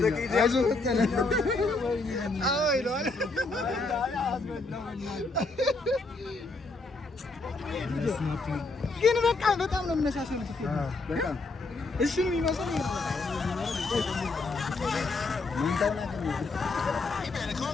አይዞህ ፈጠነ። አዎ ይለዋል። ግን በቃ በጣም ነው የሚመሳሰሉት። በጣም እሱን የሚመስለው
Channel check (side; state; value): right; quieter; 3.4 dB